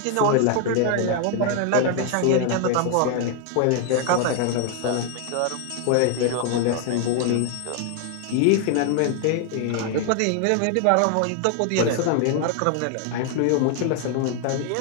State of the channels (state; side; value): different; both; correlation 0.00